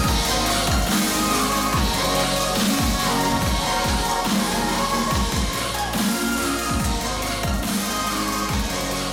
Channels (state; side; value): identical; both; correlation 1.00